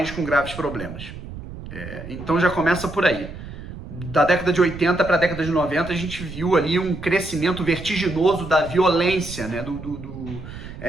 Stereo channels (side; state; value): right; noise; rumble, 12 dB below the sound